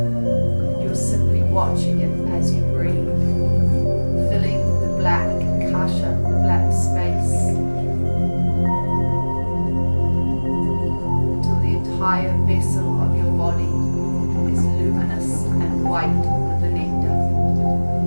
You're simply watching it as you breathe, filling the black kasha, the black space, entire vessel of your body is luminous and white with the nectar.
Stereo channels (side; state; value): both; inverted; correlation -1.00